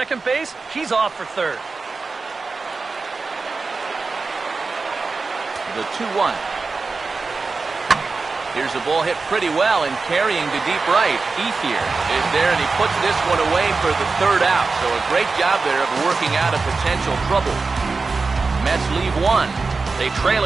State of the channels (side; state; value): left; quieter; 4.2 dB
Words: base, he's off for third. The 2-1. Here's a ball hit pretty well and carrying to deep right. Ethier is there, and he puts this one away for the third out. So a great job there of working out of potential trouble. Mets leave one. They trail